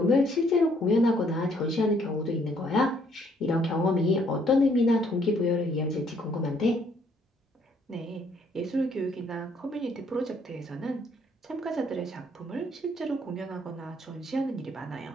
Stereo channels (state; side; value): normal; both; correlation 0.66